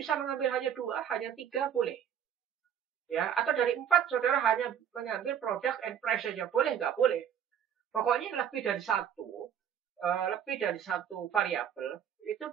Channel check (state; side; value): quieter; left; 9.0 dB